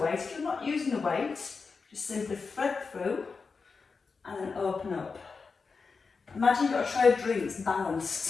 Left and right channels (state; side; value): quieter; right; 4.8 dB